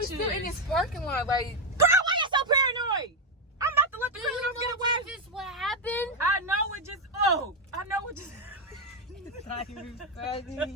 still in this parking lot? Like, Girl, why you so paranoid? I'm about to let the criminals get away. Is this what happened? I know it just. Oh, I know it just. it's not even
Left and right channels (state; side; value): normal; both; correlation 0.05